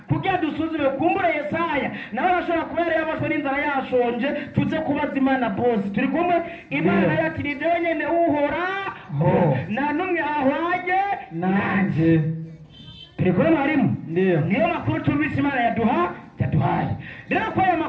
kugira dusuzume kumbura Yesaya nawe arashobora kuba yari yabashwe n'inzara yashonje tuze kubaza Imana bose turi kumwe Imana yati ni nyene uhora nta n'umwe ahwanye nanjye turi kubona harimo ndiyo niyo makuru tumvise Imana yaduhaye rero ko aya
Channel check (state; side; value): identical; both; correlation 1.00